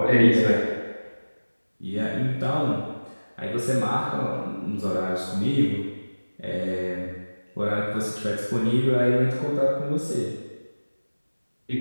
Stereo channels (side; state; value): both; inverted; correlation -1.00